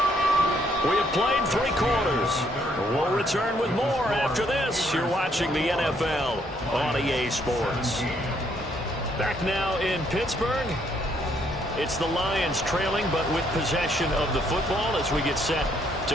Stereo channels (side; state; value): both; normal; correlation 0.70